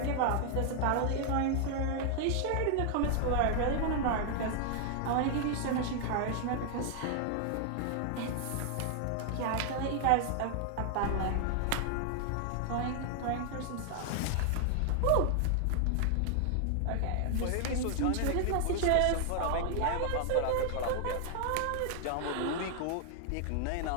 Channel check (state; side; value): different; both; correlation 0.00